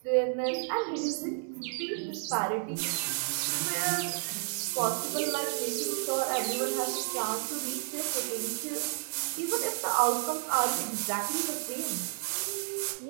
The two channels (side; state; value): left; silent; digital silence